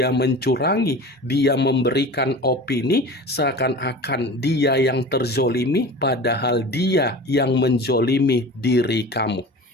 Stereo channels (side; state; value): both; normal; correlation 0.36